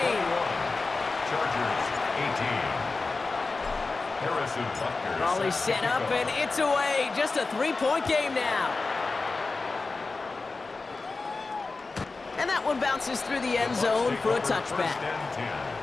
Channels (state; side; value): quieter; right; 3.8 dB